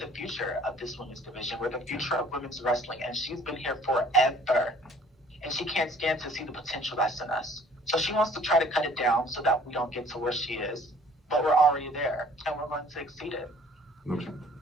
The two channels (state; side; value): normal; both; correlation 0.54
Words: future of this women's division. We're the future of women's wrestling, and she's been here forever. And she can't stand to see the potential that's in us. So she wants to try to cut it down so that we don't get to where she is. But we're already there, and we're going to exceed it. Okay.